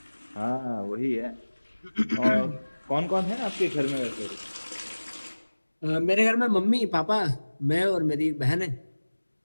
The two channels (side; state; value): both; inverted; correlation -1.00